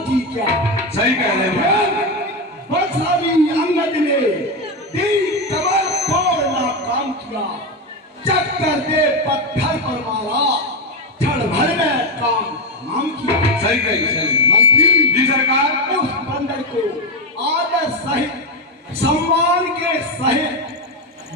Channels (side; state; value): both; normal; correlation 0.12